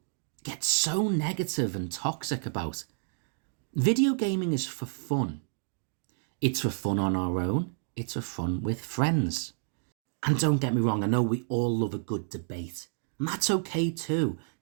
get so negative and toxic about. Video gaming is for fun. It's for fun on our own. It's for fun with friends. And don't get me wrong, I know we all love a good debate. And that's okay too.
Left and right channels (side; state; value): left; silent; digital silence